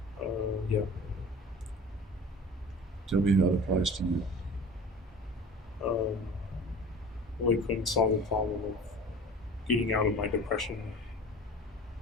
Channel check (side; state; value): both; normal; correlation 0.40